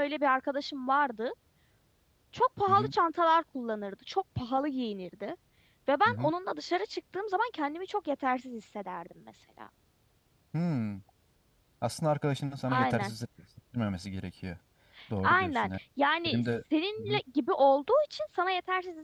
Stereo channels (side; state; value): both; identical; correlation 1.00